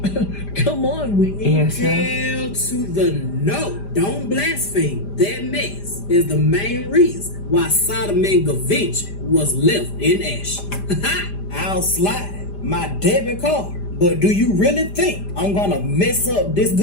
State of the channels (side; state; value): right; late; 5.0 ms